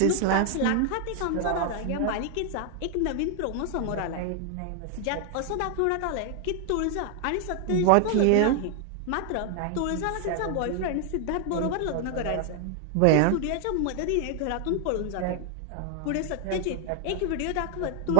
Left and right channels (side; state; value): both; different; correlation 0.00